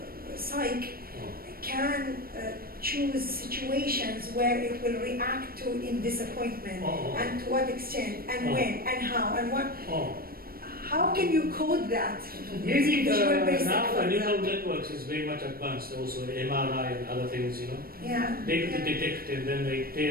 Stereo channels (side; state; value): left; late; 0.43 ms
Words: psyche can choose situations where it will react to in disappointment, and to what extent, and when, and how, and what. How can you code that? Using Visual basic now the for neural example. networks is very much advanced. Also MRI and other things, you know. Yeah. They could detect and then